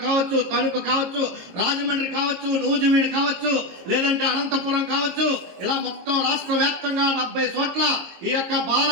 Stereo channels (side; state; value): left; late; 22 ms